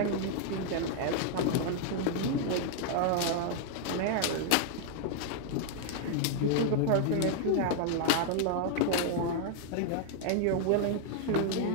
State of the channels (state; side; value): different; both; correlation 0.00